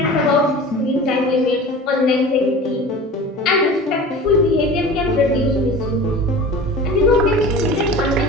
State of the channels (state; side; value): normal; both; correlation 0.37